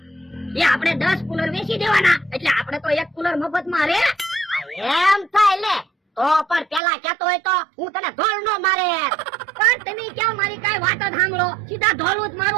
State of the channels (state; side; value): drops out; left; at 6.8 s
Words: એ આપણે 10 કુલર વેચી દેવાના, એટલે આપણે તો એક કુલર મફત માં રે. એમ થાય લે તો પણ પેલા કેતો હોય તો હું તને ધોળ નો મારે. પણ તમે ક્યાં મારી કઈ વાત જ સાંભળો, સીધા ધોળું જ